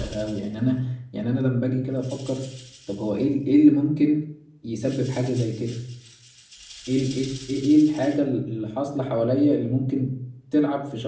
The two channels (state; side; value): identical; both; correlation 1.00